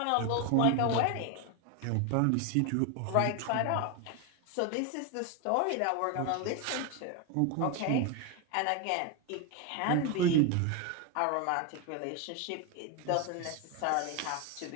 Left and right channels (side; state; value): both; different; correlation 0.02